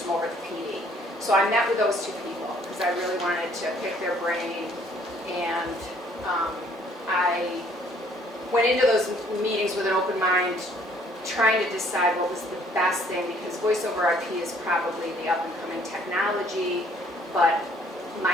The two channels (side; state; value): both; normal; correlation 0.61